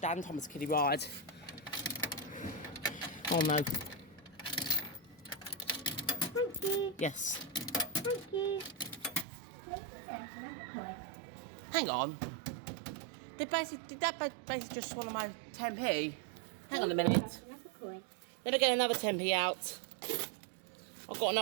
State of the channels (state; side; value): drops out; left; at 9.2 s